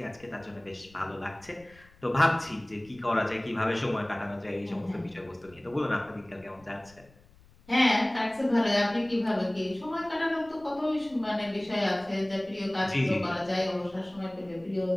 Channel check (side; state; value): left; noise; rumble, 27 dB below the sound